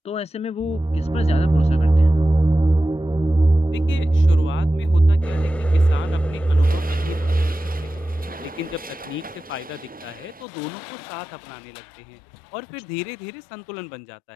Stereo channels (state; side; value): drops out; right; at 10.5 s